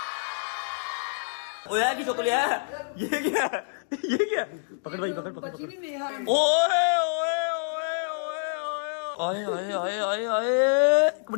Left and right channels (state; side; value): silent; right; digital silence